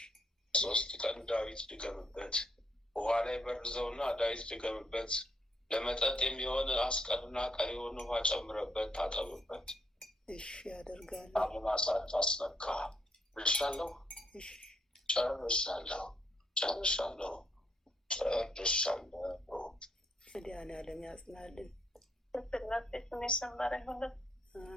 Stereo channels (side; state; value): both; normal; correlation 0.73